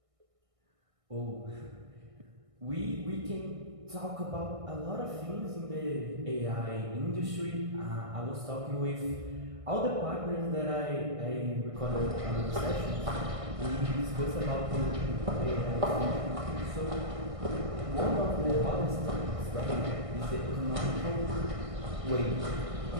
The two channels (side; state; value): left; late; 1.6 ms